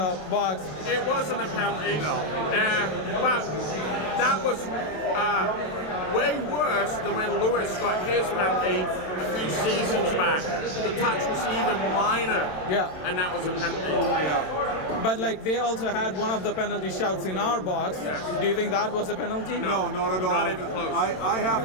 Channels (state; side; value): late; right; 27 ms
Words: box. It wasn't a penalty. No. But that was way worse than when Lewis got his penalty a few seasons back. The touch was even minor. Yeah. And that was a penalty. Yeah. But like they also had one of the penalty shouts in our box. Yes. Do you think that was a penalty? No, not at all. Not even close. I have